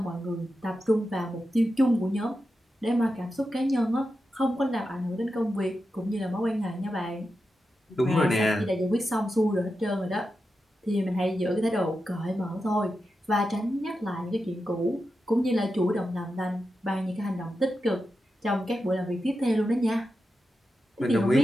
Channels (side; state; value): both; normal; correlation 0.89